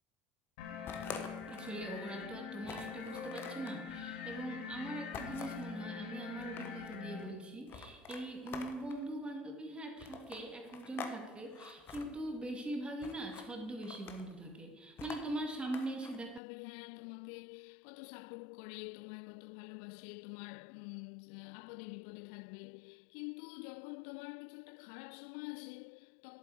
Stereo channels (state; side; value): drops out; right; at 16.4 s